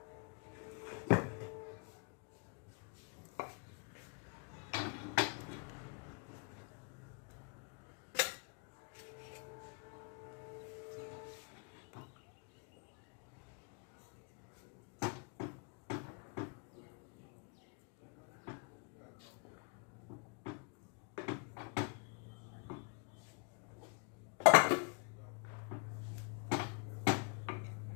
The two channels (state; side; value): quieter; right; 36.0 dB